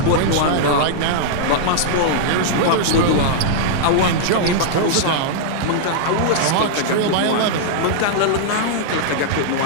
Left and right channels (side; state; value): both; different; correlation -0.02